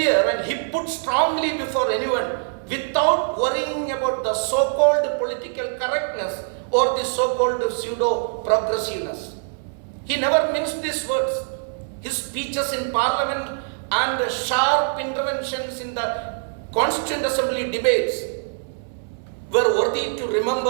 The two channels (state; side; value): silent; left; 63 dB below the other